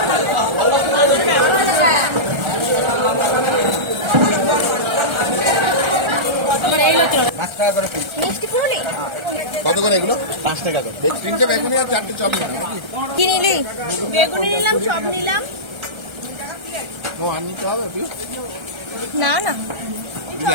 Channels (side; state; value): left; late; 1.3 ms